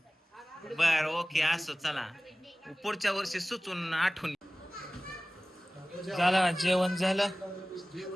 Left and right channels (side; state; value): both; normal; correlation 0.97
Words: बर ओके असो. चला पुढच्या वर्षी सुचून आठवण. झालं जेवण झालं.